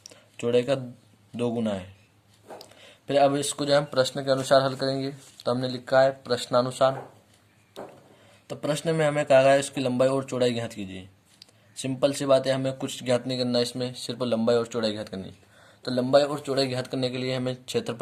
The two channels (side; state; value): both; identical; correlation 1.00